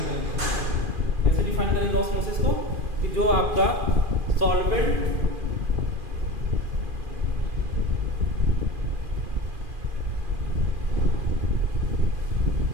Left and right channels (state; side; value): late; left; 2.4 ms